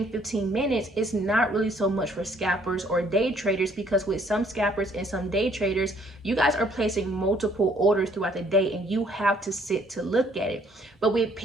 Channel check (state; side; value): normal; both; correlation 0.63